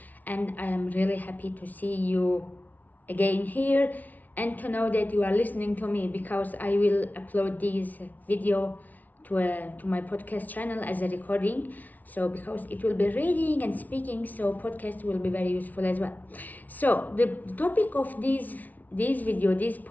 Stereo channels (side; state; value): right; late; 0.077 ms